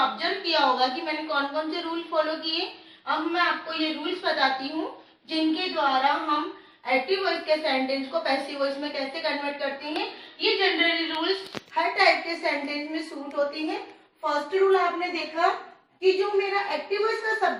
किया होगा कि मैंने कौन कौन से रूल फॉलो किए। अब मैं आपको ये रूल्स बताती हूँ जिनके द्वारा हम एक्टिव वॉइस के सेंटेंस को पैसिव वॉइस में कैसे कन्वर्ट करते हैं। ये जनरली रूल्स हर टाइप के सेंटेंस में सूट होती हैं। फर्स्ट रूल आपने देखा कि जो मेरा एक्टिव वॉइस का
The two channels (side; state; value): both; identical; correlation 1.00